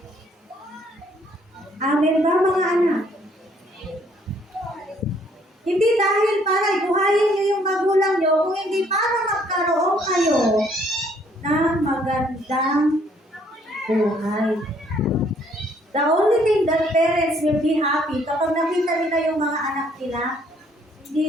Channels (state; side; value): normal; both; correlation 0.64